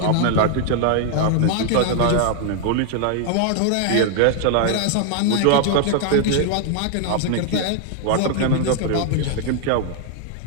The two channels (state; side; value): different; both; correlation 0.00